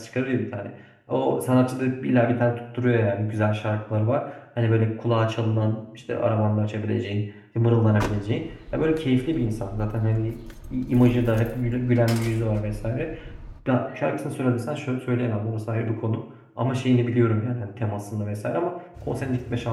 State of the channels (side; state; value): both; identical; correlation 1.00